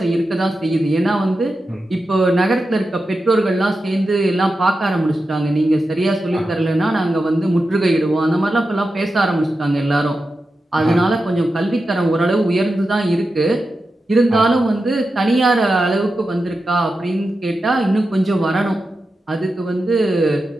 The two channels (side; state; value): both; normal; correlation 0.91